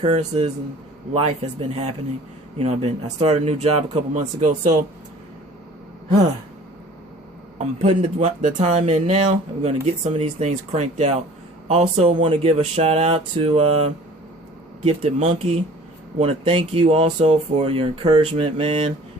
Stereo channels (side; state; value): both; normal; correlation 0.48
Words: and life has been happening. You know, I started a new job a couple months ago, so I'm putting the time in now. We're going to get some of these things cranked out. Also want to give a shout out to Gifted Monkey. Want to thank you also for your encouragement, man,